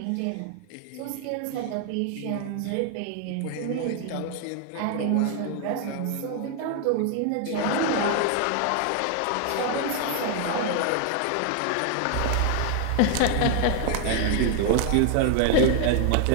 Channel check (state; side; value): different; both; correlation 0.00